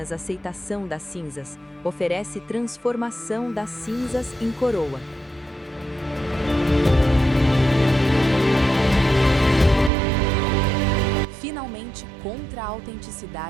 aceitação das cinzas, oferece transformação das cinzas em coroa. Finalmente, contra a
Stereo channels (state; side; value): drops out; left; at 9.9 s